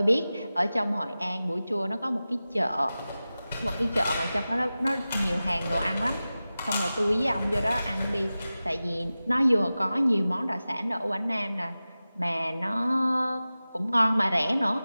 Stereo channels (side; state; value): both; inverted; correlation -0.96